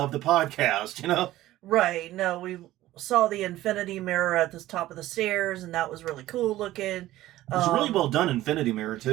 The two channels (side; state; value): left; quieter; 15.5 dB